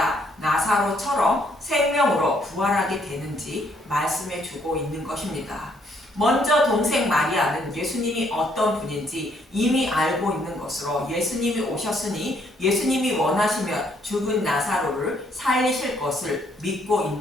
나사로처럼 생명으로 부활하게 되는지 말씀해주고 있는 것입니다. 먼저 동생 마리아는 예수님이 어떤 분인지 이미 알고 있는 것으로 예수님이 오셨으니 예수님이 원하시면 죽은 나사로를 살리실 것을 믿고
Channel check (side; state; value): both; normal; correlation 0.68